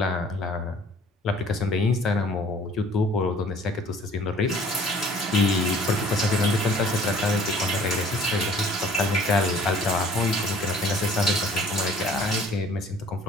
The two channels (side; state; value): both; normal; correlation 0.53